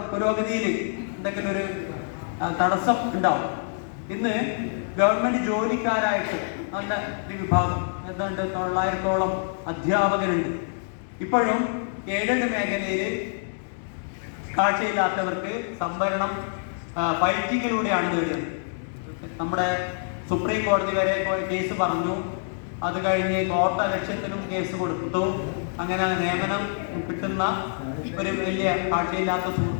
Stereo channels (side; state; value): right; silent; digital silence